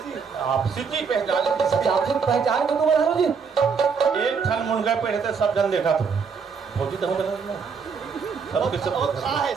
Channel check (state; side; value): quieter; left; 5.8 dB